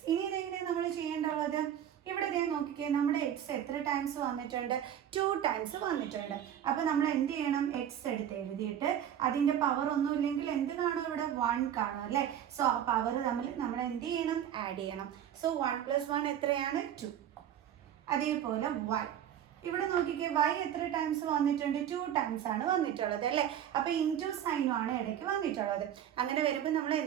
ഇനി ഇതെങ്ങനെയാണ് നമ്മൾ ചെയ്യേണ്ടത്? ഇവിടെ ഇതേ നോക്കിക്കേ, നമ്മുടെ എക്സ് എത്ര ടൈംസ് വന്നിട്ടുണ്ട്? 2 ടൈംസ് വന്നിട്ടുണ്ട്. അപ്പോൾ നമ്മൾ എന്ത് ചെയ്യണം? എക്സ് എടുത്ത് എഴുതിയിട്ട് അതിൻ്റെ പവർ ഒന്നും ഇല്ലെങ്കിൽ എന്ത് കാണും? ഇവിടെ 1 കാണും അല്ലേ? സോ ആ പവർ തമ്മിൽ നമ്മൾ എന്ത് ചെയ്യണം? ആഡ് ചെയ്യണം. സോ 1 + 1 എത്രയാണ്? 2. അതേപോലെ y, ഇവിടെ നോക്കിക്കേ, y എത്ര ടൈംസ് വന്നിട്ടുണ്ട്? 2 ടൈംസ് ആണ് വന്നിട്ടുള്ളത് അല്ലേ? അപ്പോൾ ഇൻറ്റു സൈനും ആണ് ഇടയ്ക്ക് വന്നിട്ടുള്ളത്. അങ്ങനെ വരുമ്പോൾ നമ്മൾ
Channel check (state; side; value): quieter; left; 10.1 dB